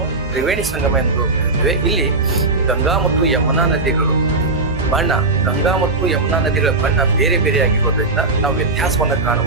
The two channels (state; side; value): quieter; left; 3.3 dB